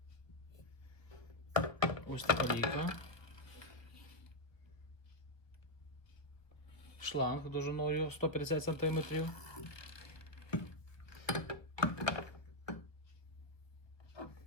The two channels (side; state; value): right; late; 1.1 ms